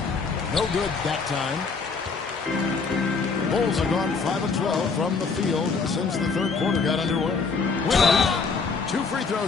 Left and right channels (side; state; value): right; quieter; 4.8 dB